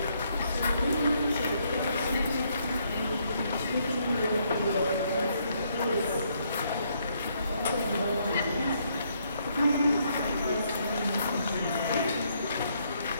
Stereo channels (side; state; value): both; inverted; correlation -0.72